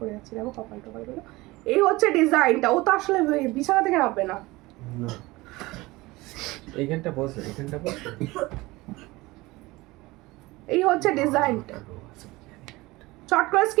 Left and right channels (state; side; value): quieter; left; 20.9 dB